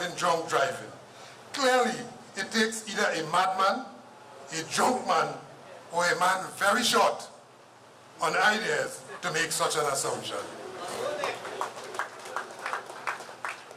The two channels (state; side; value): identical; both; correlation 1.00